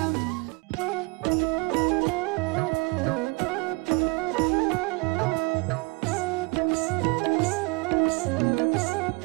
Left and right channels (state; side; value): quieter; left; 27.0 dB